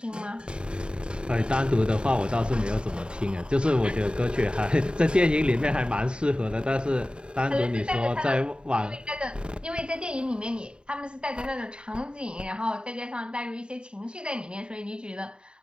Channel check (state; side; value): late; left; 0.051 ms